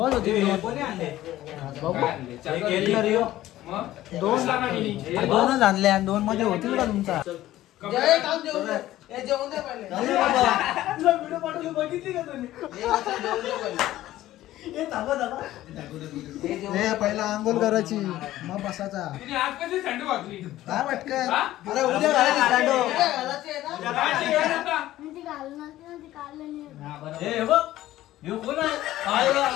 होती दोनच आणले आणि 2 मध्ये होतील का तुमचा. बघितली का तुम्ही पहिला आंघोळ करायची मग बसायचा. काय वाटतं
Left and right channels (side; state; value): right; quieter; 14.7 dB